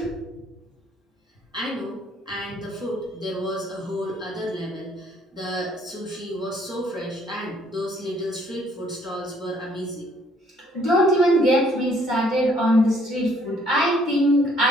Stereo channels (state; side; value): normal; both; correlation 0.63